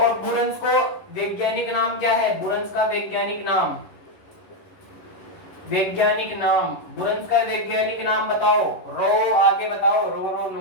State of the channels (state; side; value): late; right; 11 ms